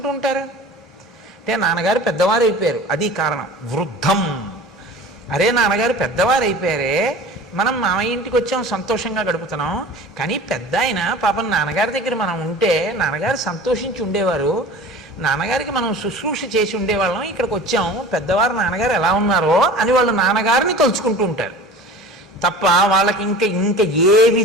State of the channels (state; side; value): normal; both; correlation 0.40